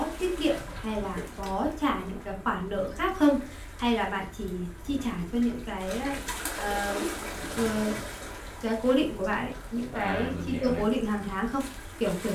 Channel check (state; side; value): identical; both; correlation 1.00